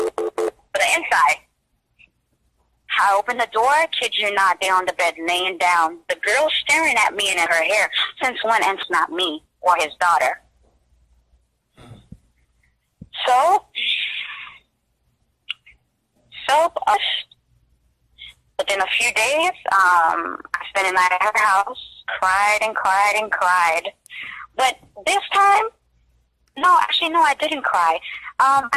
the inside. I opened the door, kid you not, they're on the bed laying down. The girl staring at me and at her hair. Since when? And it's not me or his daughter. So within a few days, I spent the night at her house, cried and cried and cried. But this time, no, I didn't cry. I'm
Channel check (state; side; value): identical; both; correlation 1.00